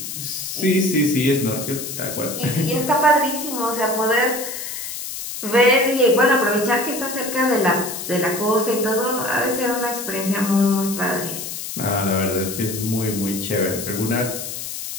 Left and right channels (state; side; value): noise; left; hiss, 7 dB below the sound